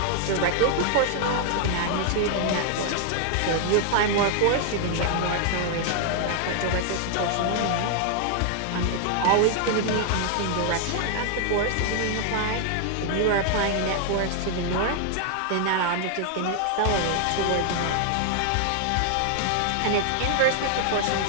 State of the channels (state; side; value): different; both; correlation 0.00